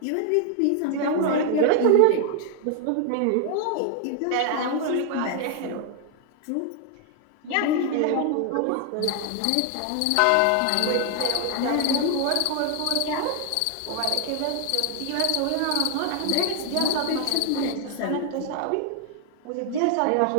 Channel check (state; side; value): different; both; correlation 0.00